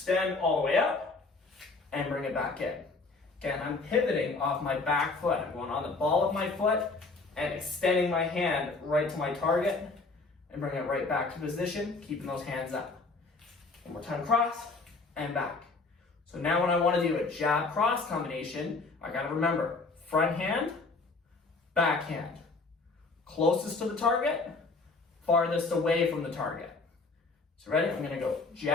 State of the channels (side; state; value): right; quieter; 3.8 dB